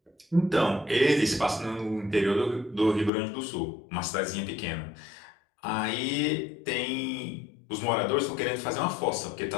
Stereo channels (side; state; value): right; drops out; at 3.1 s